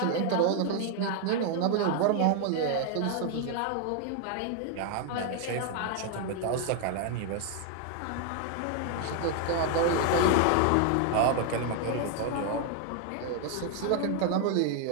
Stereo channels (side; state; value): both; different; correlation 0.00